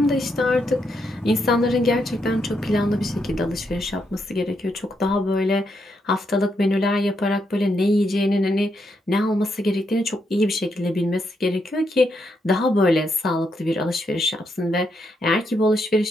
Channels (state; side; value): normal; both; correlation 0.80